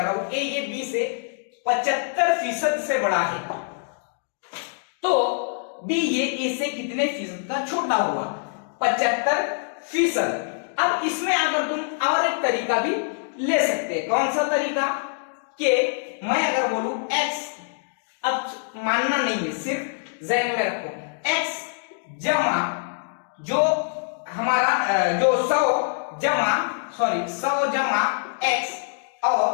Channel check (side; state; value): right; silent; digital silence